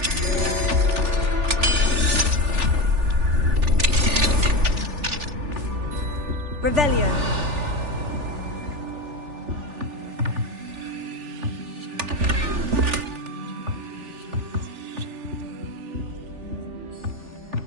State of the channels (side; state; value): left; late; 3.4 ms